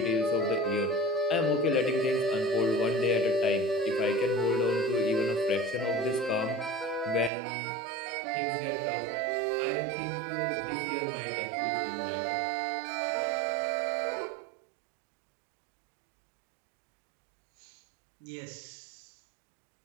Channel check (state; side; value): drops out; left; at 7.3 s